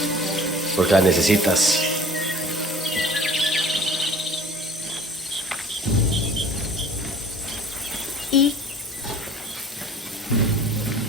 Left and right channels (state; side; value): normal; both; correlation 0.48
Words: porque la necesitas. ¿Y?